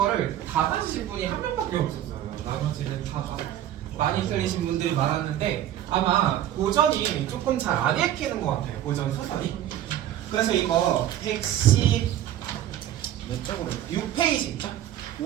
다 맞으신 분이 한 명밖에 없었어요. 나머지는 다 많이 틀리신 분들이 많았는데 아마 고전이 조금 잘 안 읽히는 것 같아요. 고전 소설이. 그래서 이거 110 몇 쪽으로 6페이지 있죠?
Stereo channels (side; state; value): left; quieter; 11.9 dB